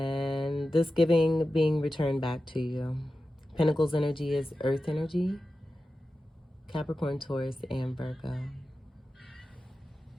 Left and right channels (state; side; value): normal; both; correlation 0.93